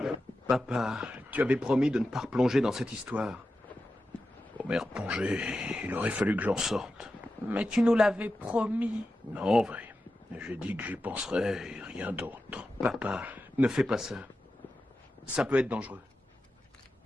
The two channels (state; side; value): normal; both; correlation 0.91